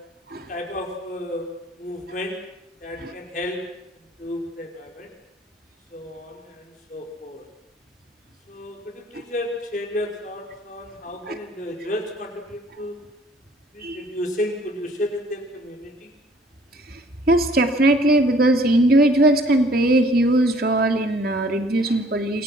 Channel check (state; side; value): normal; both; correlation 0.57